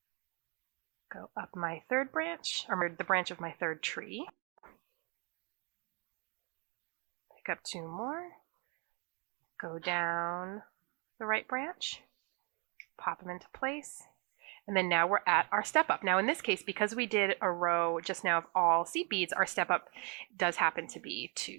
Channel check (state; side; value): quieter; left; 34.7 dB